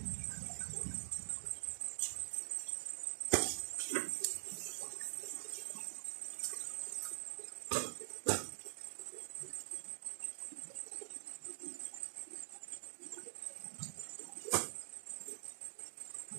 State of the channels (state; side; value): silent; left; digital silence